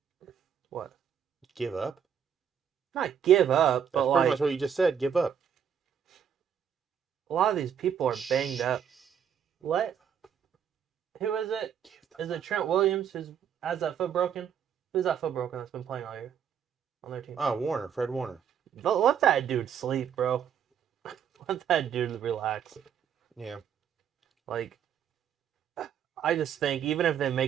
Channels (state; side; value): quieter; left; 8.3 dB